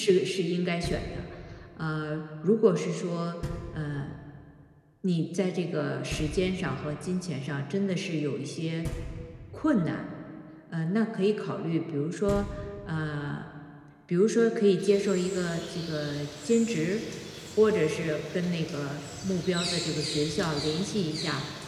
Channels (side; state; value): both; identical; correlation 1.00